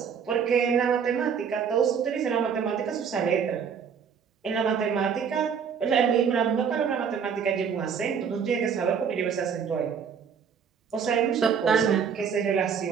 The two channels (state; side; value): quieter; left; 6.9 dB